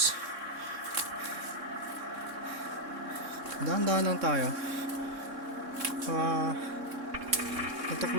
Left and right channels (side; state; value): left; late; 3.6 ms